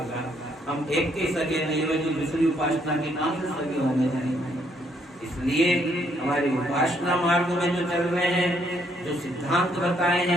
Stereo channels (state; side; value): normal; both; correlation 0.70